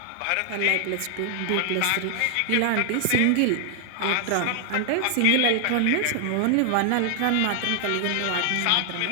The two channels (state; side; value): different; both; correlation 0.00